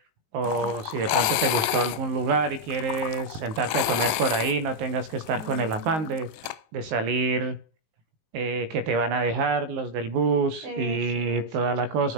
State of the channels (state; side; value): late; left; 19 ms